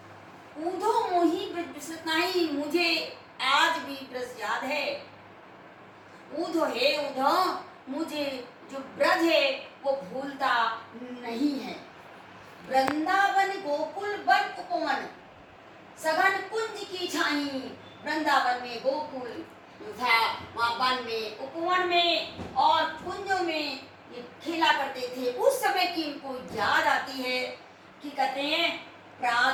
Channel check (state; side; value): identical; both; correlation 1.00